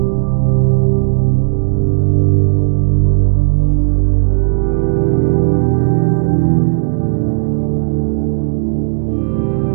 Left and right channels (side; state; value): left; silent; digital silence